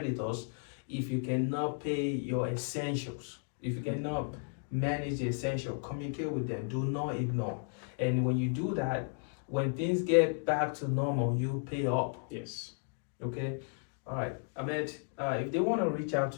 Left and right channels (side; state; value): right; silent; 55 dB below the other